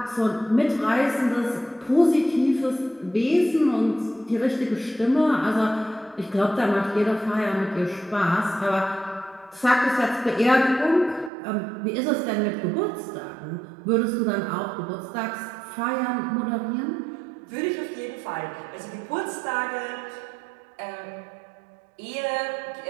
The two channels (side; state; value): left; drops out; at 11.3 s